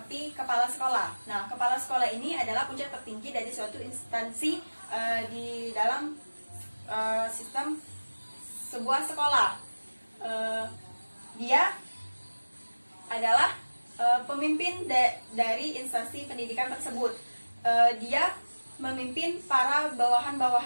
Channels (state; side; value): inverted; both; correlation -1.00